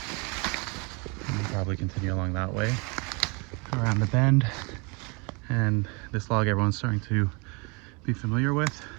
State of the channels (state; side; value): quieter; left; 30.9 dB